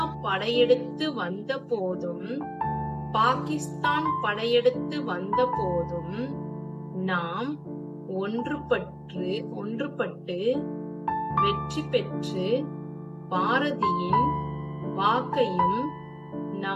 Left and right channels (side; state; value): both; identical; correlation 1.00